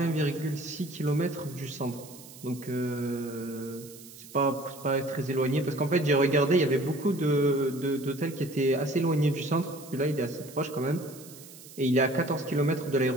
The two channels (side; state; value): right; noise; hiss, 18 dB below the sound